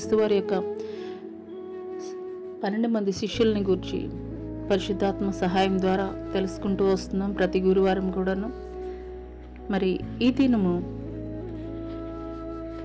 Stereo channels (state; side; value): identical; both; correlation 1.00